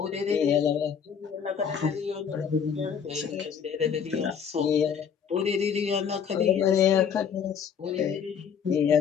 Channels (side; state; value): right; quieter; 7.3 dB